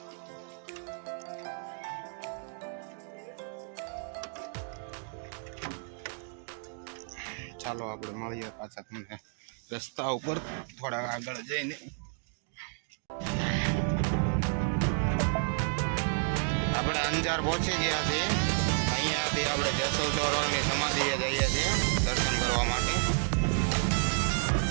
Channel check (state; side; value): silent; left; 55 dB below the other